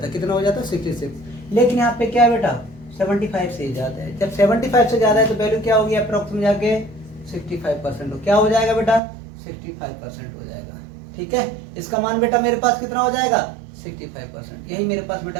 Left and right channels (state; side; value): drops out; left; at 9.0 s